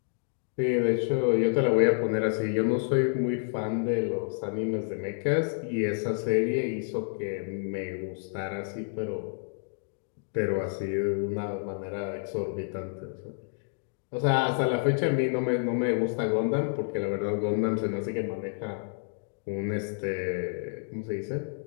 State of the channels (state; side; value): silent; right; digital silence